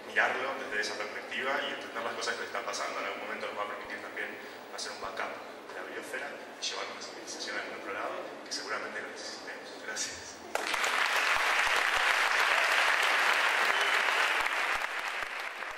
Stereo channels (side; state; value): both; identical; correlation 1.00